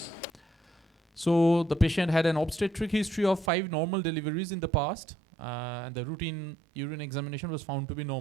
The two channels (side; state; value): left; drops out; at 3.5 s